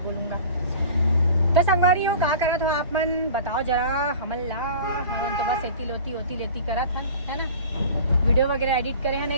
बोलूंगा। तो संगवारी हो का करत हो आप मन बताओ जरा। हमन तो बस होती लेती करत हन, है ना। वीडियो वगैरह एडिट करे हन,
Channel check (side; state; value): both; inverted; correlation -0.40